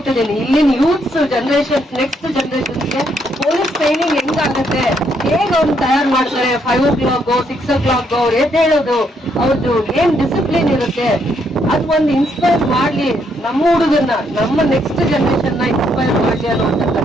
ಇಲ್ಲಿನ ಯೂತ್ಸ್ ಜನರೇಷನ್, ನೆಕ್ಸ್ಟ್ ಜನರೇಷನ್ಗೆ ಪೊಲೀಸ್ ಟ್ರೈನಿಂಗ್ ಹೆಂಗಾಗುತ್ತೆ, ಹೇಗೆ ಅವ್ರು ತಯಾರು ಮಾಡ್ತಾರೆ, 5 o'clock 6 o'clock ಅವ್ರು ಹೇಳೋದು, ಅವ್ರದ್ದು ಏನ್ ಡಿಸಿಪ್ಲಿನ್ ಇರುತ್ತೆ, ಅದು ಒಂದು ಇನ್ಸ್ಪೈರ್ ಮಾಡ್ಲಿ ನಮ್ಮ ಹುಡುಗನ್ನ, ನಮ್ಮ ನೆಕ್ಸ್ಟ್ ಜನರೇಷನ್ ನ ಇನ್ಸ್ಪೈರ್ ಮಾಡ್ಲಿ ಅನ್ನುವಂತ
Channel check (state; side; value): normal; both; correlation 0.73